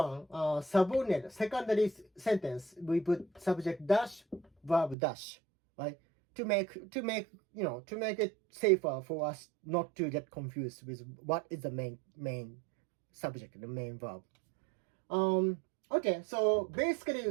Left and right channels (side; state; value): left; drops out; at 5.0 s